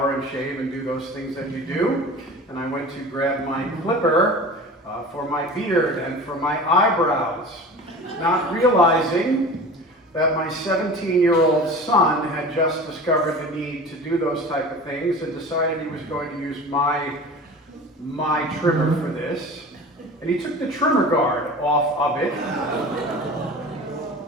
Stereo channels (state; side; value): normal; both; correlation 0.37